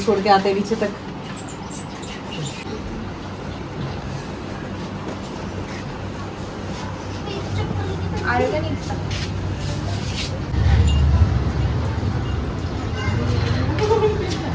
के आते हैं नीचे तक। आएगा नहीं।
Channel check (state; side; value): identical; both; correlation 1.00